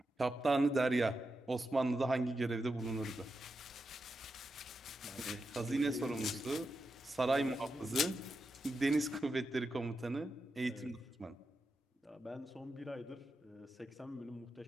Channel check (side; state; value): both; normal; correlation 0.87